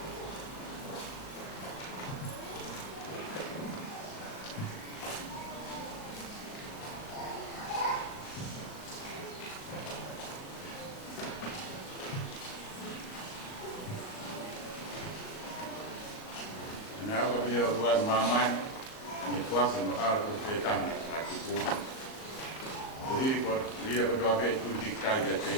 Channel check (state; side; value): late; right; 38 ms